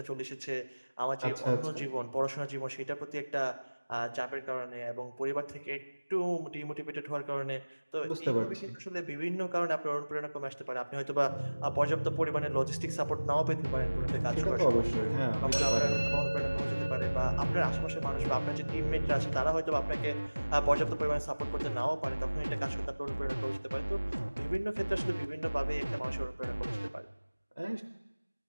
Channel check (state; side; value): inverted; both; correlation -1.00